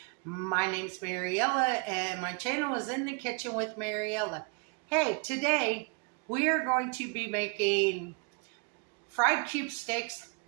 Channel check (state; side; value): quieter; left; 33.4 dB